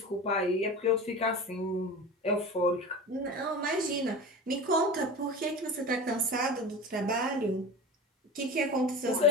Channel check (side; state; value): both; normal; correlation 0.32